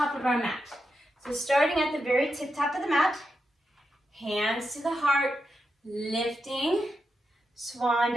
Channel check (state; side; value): normal; both; correlation 0.86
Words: of our mat. So starting at the very tip top of the mat, hands to the heart, lifting, swan